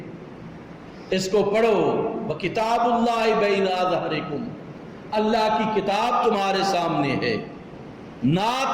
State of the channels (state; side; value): identical; both; correlation 1.00